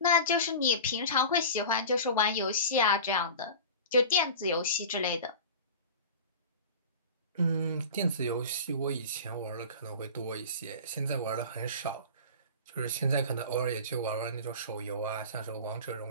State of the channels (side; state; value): both; inverted; correlation -0.34